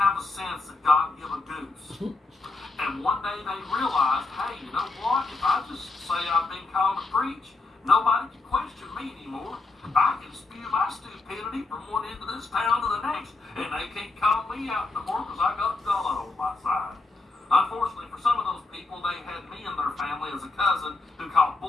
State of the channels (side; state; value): right; quieter; 3.4 dB